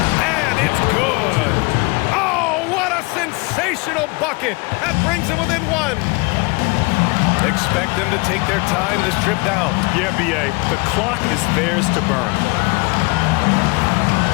And it's good. Oh, what a sensational bucket. That brings them within one. Expect them to take their time this trip down. Yeah, B.A., the clock is theirs to burn.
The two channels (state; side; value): quieter; right; 27.4 dB